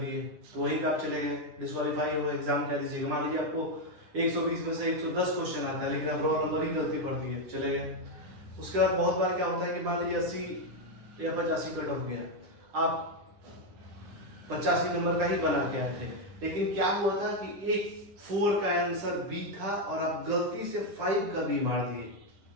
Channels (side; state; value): left; late; 9.9 ms